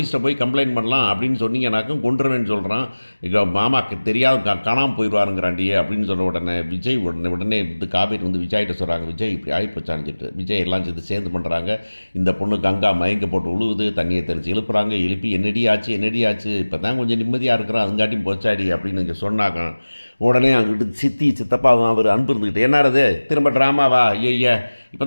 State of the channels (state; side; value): inverted; both; correlation -1.00